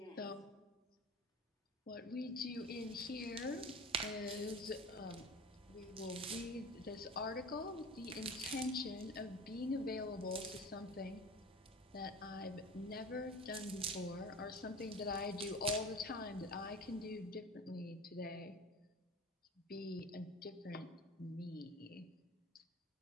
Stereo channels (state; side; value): normal; both; correlation 0.35